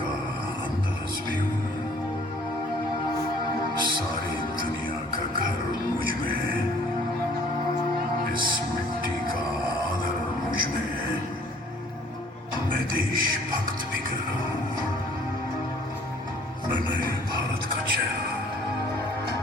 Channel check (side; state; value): both; normal; correlation 0.56